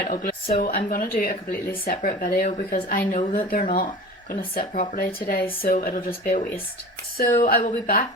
ugly. So I'm going to do a completely separate video because I know that they're not going to sit properly today, so it'll just be a waste. So I will be back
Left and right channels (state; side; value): normal; both; correlation 0.37